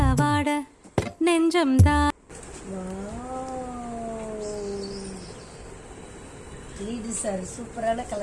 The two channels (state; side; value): identical; both; correlation 1.00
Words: நெஞ்சம் தான். லீடர் சார் சூப்பரான